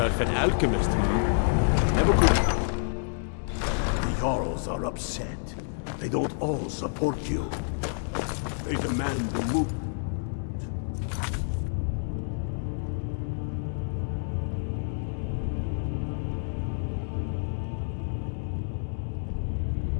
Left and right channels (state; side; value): silent; right; digital silence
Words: an alchemist, Never could. The Jarls are upset. They don't all support you. They demand the move.